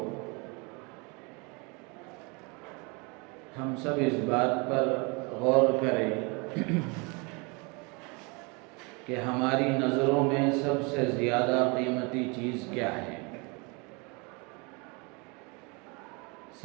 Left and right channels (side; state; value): left; quieter; 29.9 dB